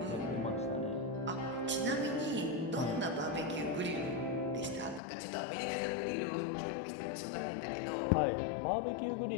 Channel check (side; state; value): right; drops out; at 5.0 s